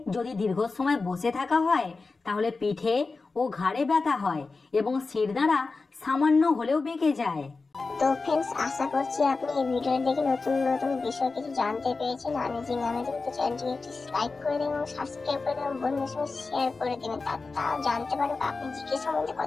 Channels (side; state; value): right; quieter; 4.0 dB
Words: যদি দীর্ঘ সময় বসে থাকা হয় তাহলে পিঠে ও ঘাড়ে ব্যথা হয় এবং শিরদাঁড়া সামান্য হলেও বেঁকে যায়। তো ফ্রেন্ডস, আশা করছি আপনি এই ভিডিও দেখে নতুন নতুন বিষয় কিছু জানতে পেরেছেন। আমেজিং তো চ্যানেলটিকে একটি লাইক করে দেবেন এবং সাবস্ক্রাইব করে দেবেন, বন্ধুদের সঙ্গে শেয়ার করে দেবেন, তারা জানতে পারবে আপনি জিকে সম্বন্ধে